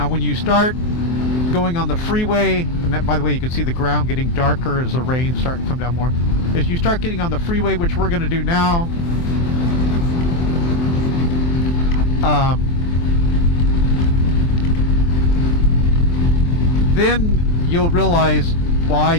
when you start going on the freeway, and that, by the way, you can see the ground getting darker as the rain's starting to come down more. As you start getting on the freeway, which we're going to do now, then you'll realize why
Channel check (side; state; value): right; late; 23 ms